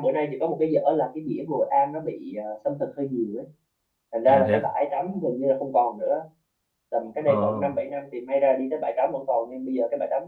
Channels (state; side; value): identical; both; correlation 1.00